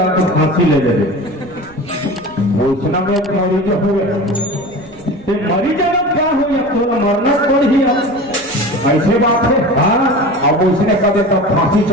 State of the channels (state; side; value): noise; right; rumble, 24 dB below the sound